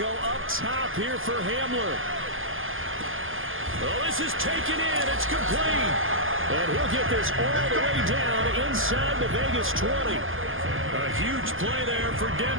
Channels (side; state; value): left; late; 0.59 ms